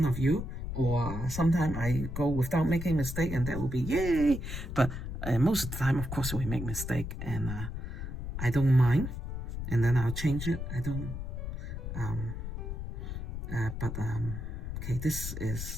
of you, or sometimes I go without making mistake, and that will be yay. But most of the time, of course, we make mistake, and I don't mind, and then I'll change it. I don't, okay, this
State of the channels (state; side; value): noise; left; rumble, 5 dB below the sound